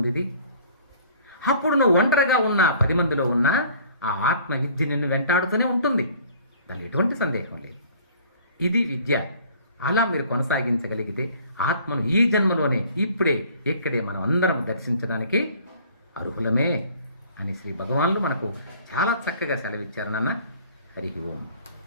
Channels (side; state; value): both; inverted; correlation -0.52